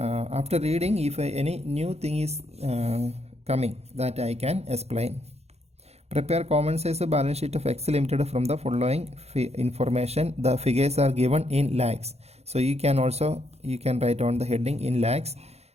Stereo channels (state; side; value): late; left; 0.31 ms